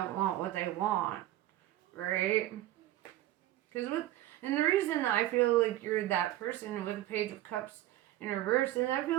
want what they want, right? And the reason I feel like you're that person with the Page of Cups in reverse is I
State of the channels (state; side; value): quieter; left; 14.4 dB